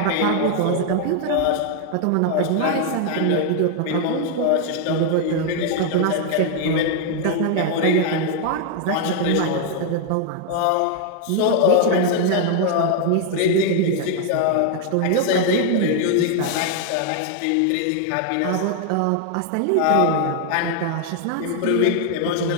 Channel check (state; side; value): different; both; correlation 0.00